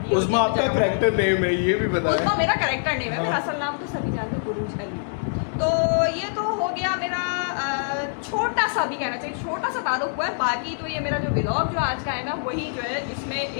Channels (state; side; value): silent; right; digital silence